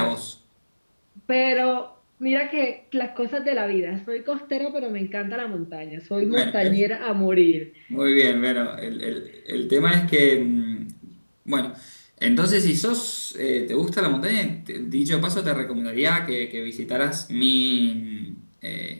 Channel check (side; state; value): both; inverted; correlation -1.00